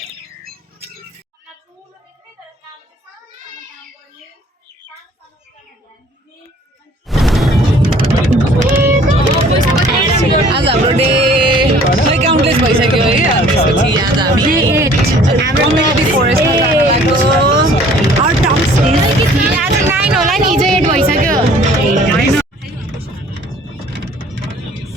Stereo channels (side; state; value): both; normal; correlation 0.54